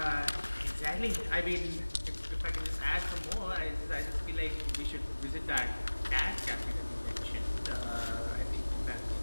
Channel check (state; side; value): inverted; both; correlation -1.00